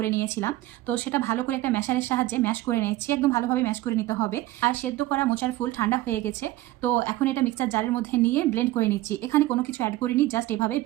নিয়েছিলাম। তো সেটা ভালো করে একটা ম্যাশারের সাহায্যে ম্যাশ করে নিয়েছি, একদম ভালোভাবে ম্যাশ করে নিতে হবে। আর সেদ্ধ করা মোচার ফুল ঠান্ডা হয়ে গেছে। তো এখন এটা মিক্সার জারের মধ্যে নিয়ে ব্লেন্ড করে নিচ্ছি। এখানে কোনো কিছু অ্যাড করিনি, জাস্ট এভাবে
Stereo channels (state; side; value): quieter; left; 16.7 dB